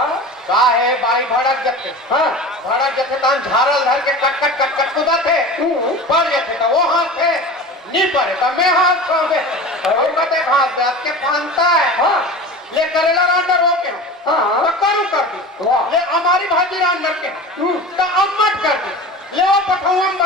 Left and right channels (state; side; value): normal; both; correlation 0.34